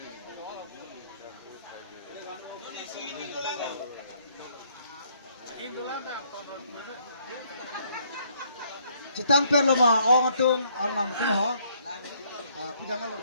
Cetang per lo mah, orang tung alam tu ha. Pidangan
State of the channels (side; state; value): both; inverted; correlation -0.68